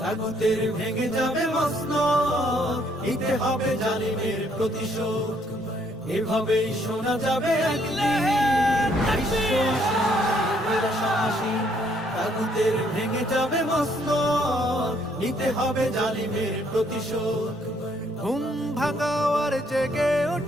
তাগুতের ভেঙে যাবে মসনদ, নিতে হবে জালিমের প্রতিশোধ। এভাবেই শোনা যাবে একদিন বিশ্ব আসনে মোরা সমাসী। তাগুতের ভেঙে যাবে মসনদ, নিতে হবে জালিমের প্রতিশোধ। ঘুম ভাঙাও আর জেগে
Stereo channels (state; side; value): normal; both; correlation 0.68